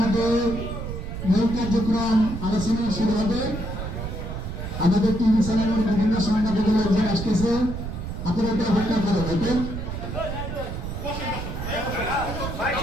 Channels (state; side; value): noise; right; rumble, 6 dB below the sound